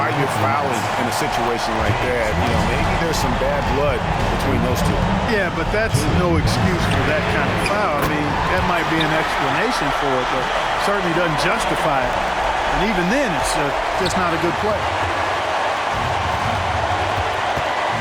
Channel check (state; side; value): identical; both; correlation 1.00